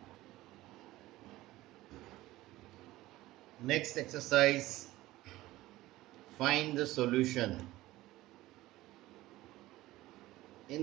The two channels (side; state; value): left; quieter; 17.2 dB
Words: Next exercise, find the solution.